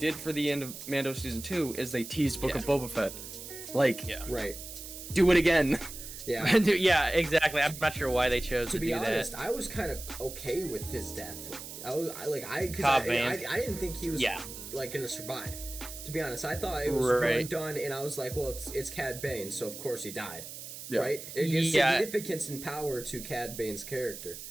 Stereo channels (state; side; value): noise; right; hiss, 11 dB below the sound